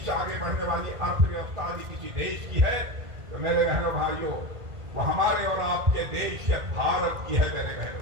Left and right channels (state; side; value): late; left; 1.5 ms